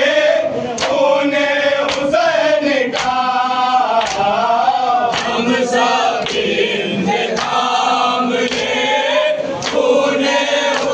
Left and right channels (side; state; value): both; identical; correlation 1.00